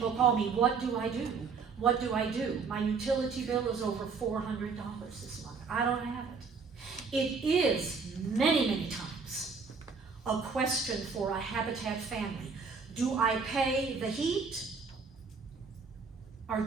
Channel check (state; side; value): quieter; left; 5.1 dB